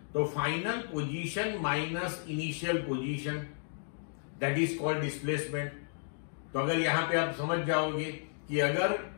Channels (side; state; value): right; silent; digital silence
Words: तो final position minus initial position, that is called displacement. तो अगर यहां पे आप समझ जाओगे कि अगर